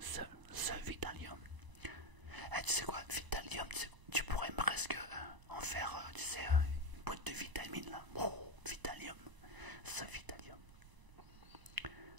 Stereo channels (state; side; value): late; left; 1.0 ms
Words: Vitalium. Eh, tu sais quoi, Vitalium, tu pourrais presque en faire, tu sais, une boîte de vitamines là. Oh, Vitalium, ce Vitalium.